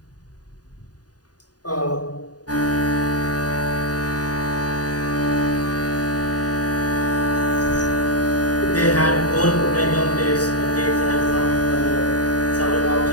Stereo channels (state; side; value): late; right; 0.68 ms